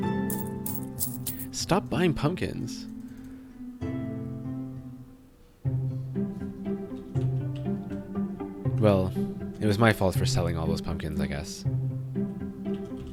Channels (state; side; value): identical; both; correlation 1.00